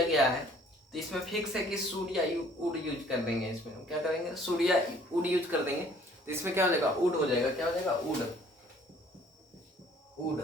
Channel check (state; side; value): normal; both; correlation 0.57